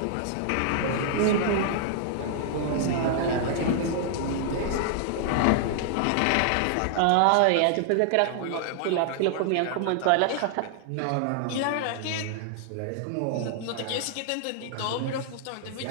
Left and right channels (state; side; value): different; both; correlation -0.01